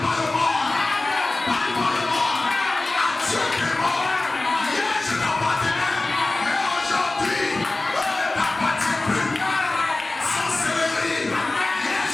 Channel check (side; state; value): right; quieter; 3.0 dB